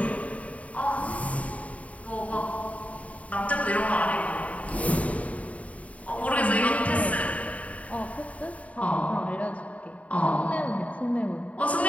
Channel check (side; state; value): right; late; 0.067 ms